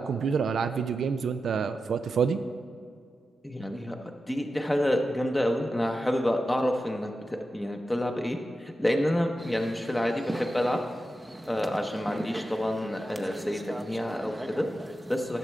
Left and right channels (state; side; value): normal; both; correlation 0.91